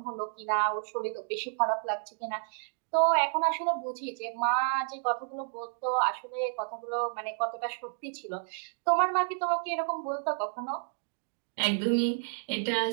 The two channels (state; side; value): silent; left; digital silence